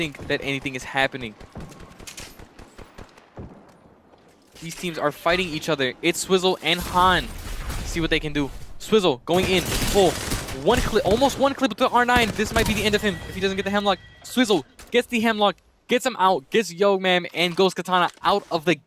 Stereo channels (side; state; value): both; identical; correlation 1.00